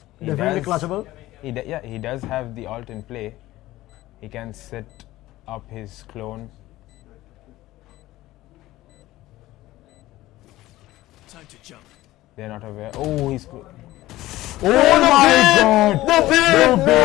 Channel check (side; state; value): right; quieter; 16.7 dB